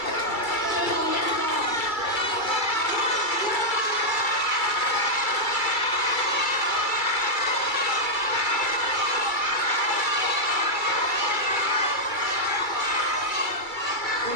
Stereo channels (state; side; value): late; right; 2.3 ms